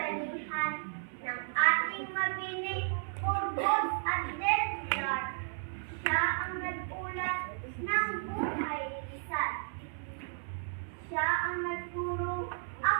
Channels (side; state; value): left; silent; 55 dB below the other